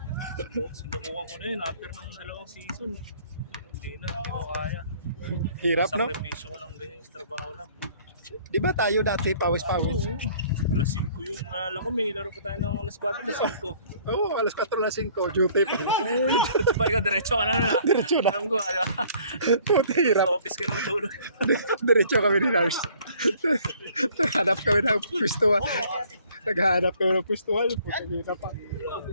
Sinukuha ko na yun after ng 2 season. Hindi na, hindi ko kaya. Hirap, no? Sakripisyo ko lang ganyan sa trabaho lang. Di ba tayo dati pawis-pawis? Oo. Alas 5 yung nalala ko, may laro pa tayo ng alas 4, alas 5. Oo, alas 4 na 5, duty pa. Diba ikaw, diretso ka na na. Diretso na. Alam ko, Puti, hirap. sa office ka na matulog. Diretso kami ni Lars. Naghanap kami ng pwestuhan. Naghanap kami ng pwestuhan. Puti, hirap pa.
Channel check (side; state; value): both; inverted; correlation -0.56